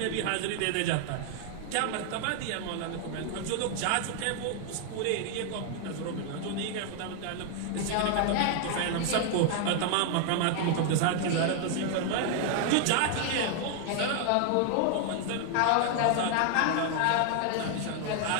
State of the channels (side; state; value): both; different; correlation 0.00